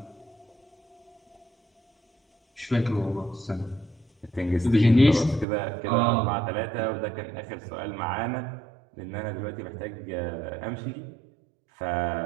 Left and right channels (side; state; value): left; drops out; at 5.5 s